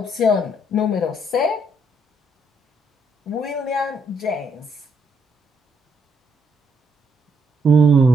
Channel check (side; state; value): both; normal; correlation 0.72